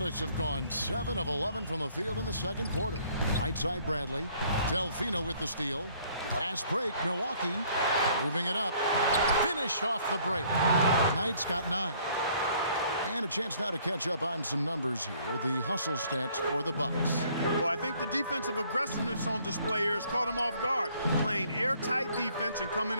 have gone 7 of 11 from the field in the second quarter. Right side Bradley. Delfino with the steal. Fast break, Milwaukee. Moving it up. Finished off the break. Knight's got 9. And a chance now to catch up on some numbers here. The hustle stats for the Bucks. Well, I think the defensive aggressiveness on display here has caught them off guard. Playing airtight defense and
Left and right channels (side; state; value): both; inverted; correlation -0.60